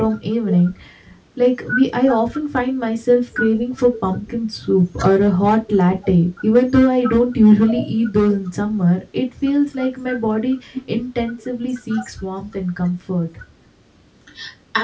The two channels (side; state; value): both; identical; correlation 1.00